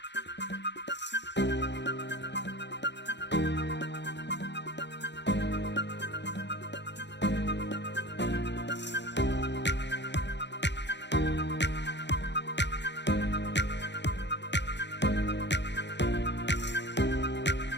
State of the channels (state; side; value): late; right; 0.51 ms